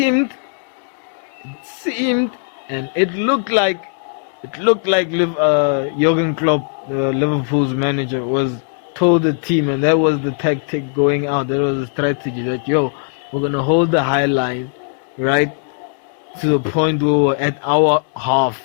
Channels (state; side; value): silent; right; 67 dB below the other